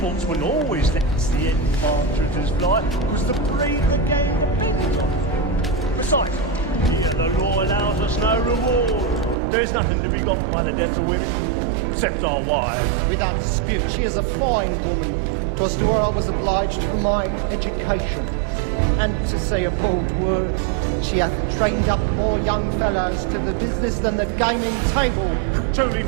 always lets the end partridges fly, because the breed of the game depends on it. Besides, here the law allows us no reward. There's nothing to be got by the death of women, except our wives. Without dispute, she is a fine woman. 'Twas to her I was obliged for my education. And to say a bold word, she hath trained up more young fellows to the business than the gaming table. Truly,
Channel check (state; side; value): drops out; left; at 9.3 s